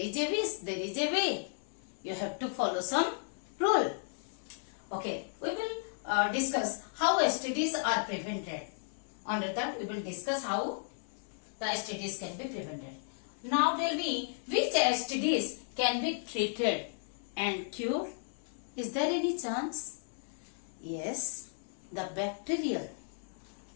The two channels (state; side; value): silent; right; digital silence